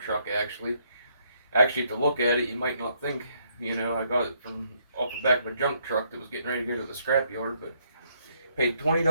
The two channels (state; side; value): inverted; both; correlation -0.72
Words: truck, actually. Actually, to look at it, you might not think, I got it from off the back of a junk truck that was getting ready to go to the scrap yard, but paid